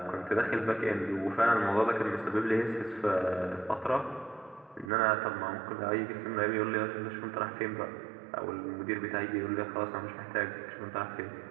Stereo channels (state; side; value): drops out; left; at 4.9 s